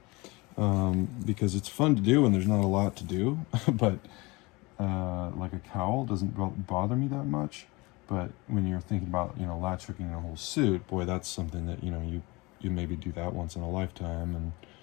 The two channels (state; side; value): quieter; right; 24.3 dB